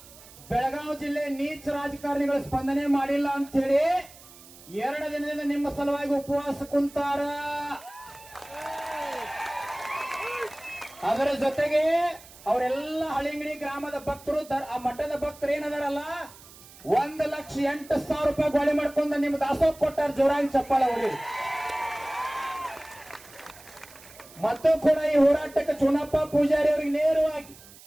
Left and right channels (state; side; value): noise; right; hiss, 21 dB below the sound